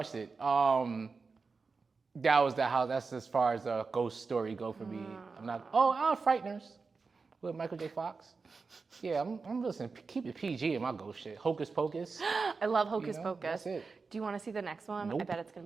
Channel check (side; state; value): left; quieter; 4.5 dB